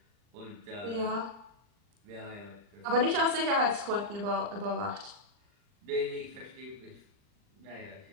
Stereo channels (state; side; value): late; left; 39 ms